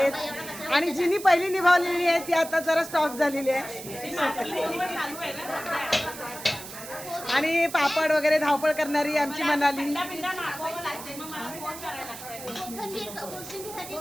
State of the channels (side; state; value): right; noise; hiss, 12 dB below the sound